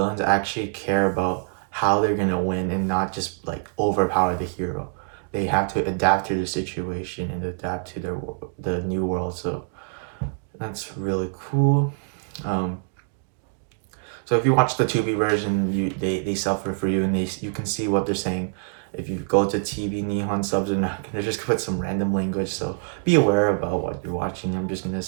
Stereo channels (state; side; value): silent; left; digital silence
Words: actually care about how they're gonna win, and not just like overpower the hero. They have to adapt to the situation and adapt to the new world. So that's really cool. So if you watch the 2B version, they suffer for you, and you can see what they're saying. If you go to TV, Nihon subs are not gonna just put some random language. So be aware about what you're watching. I'm just gonna